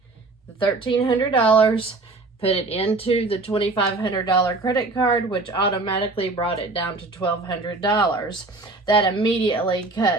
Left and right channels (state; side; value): quieter; left; 3.3 dB